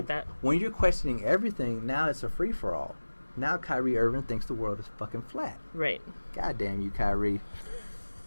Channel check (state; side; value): inverted; both; correlation -1.00